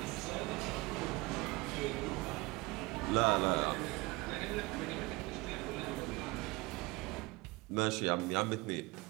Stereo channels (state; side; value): quieter; left; 23.0 dB